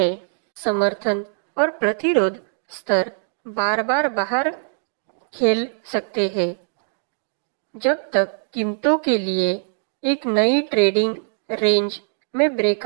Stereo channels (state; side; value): silent; left; 59 dB below the other